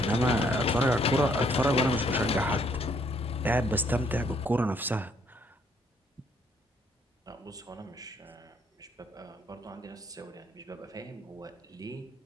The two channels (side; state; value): both; normal; correlation 0.67